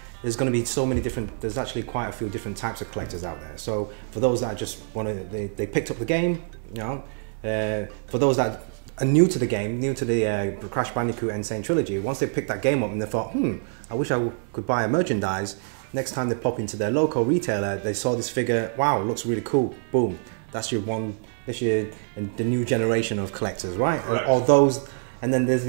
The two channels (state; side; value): silent; left; 61 dB below the other